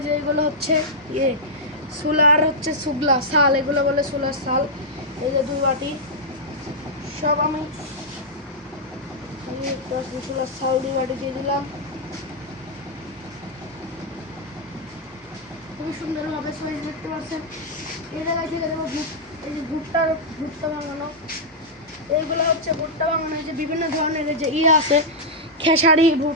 যে এগুলো হচ্ছে সোলার হচ্ছে সুগলা শাল, এগুলো বলে সোলার শাল। এই যে 2 বাটি সব আমি সোলার শাল 2 বাটি দিয়ে দিলাম। খুবই সুন্দরভাবে সাইজ দেখতে পাচ্ছেন। এই জায়গায় থেকে দেবো এই যে ভুট্টা ভাঙানো, এইগুলো হচ্ছে ভুট্টা ভাঙানো। এই যে বিভিন্ন ধরনের যে আছে খেসারি,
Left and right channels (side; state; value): both; normal; correlation -0.07